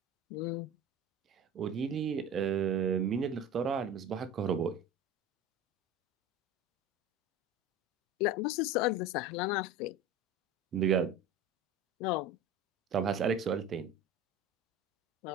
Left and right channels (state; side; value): normal; both; correlation 0.34